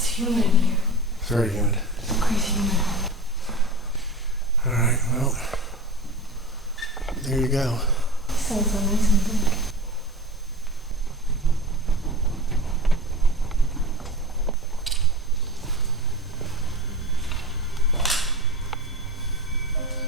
humid in here. It's very humid. It's crazy humid. Alright, well, there you go. Sounds so nice and big.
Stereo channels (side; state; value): both; normal; correlation 0.33